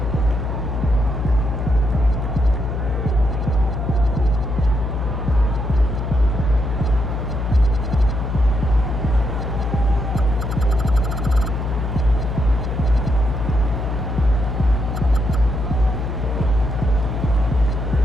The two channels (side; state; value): left; noise; hum, 2 dB below the sound